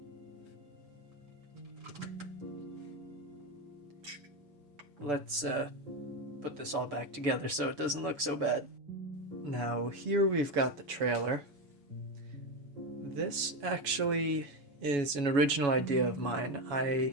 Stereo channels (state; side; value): late; left; 6.7 ms